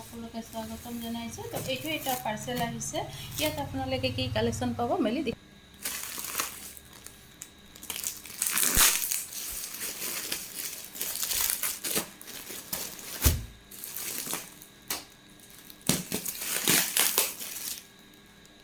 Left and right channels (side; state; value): both; identical; correlation 1.00